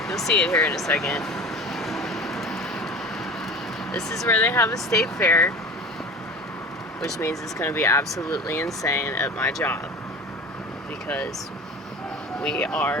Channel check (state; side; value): normal; both; correlation 0.36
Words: You'll see it here in a second. This is where they have a state fair, which means it's going to be absolutely insane at my job because we